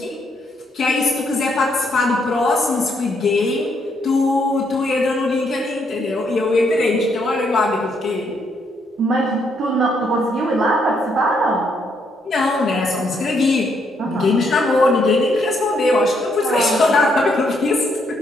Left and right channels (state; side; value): normal; both; correlation 0.74